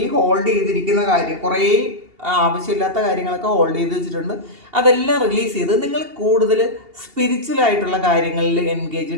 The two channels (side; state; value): left; late; 2.8 ms